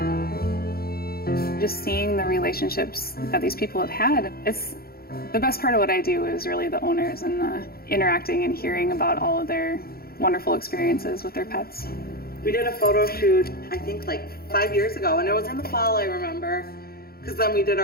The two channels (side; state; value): right; late; 0.44 ms